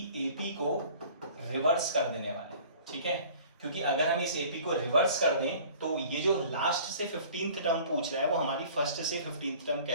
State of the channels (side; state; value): both; inverted; correlation -0.48